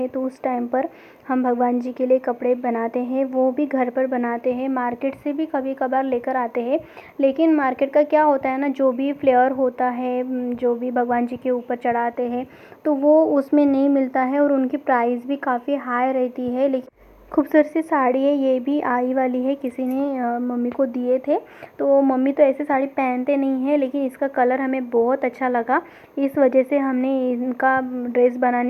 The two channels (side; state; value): both; identical; correlation 1.00